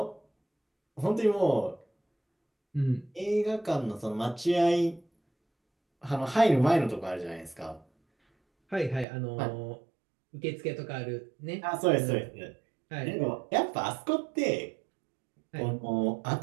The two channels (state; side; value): drops out; left; at 9.1 s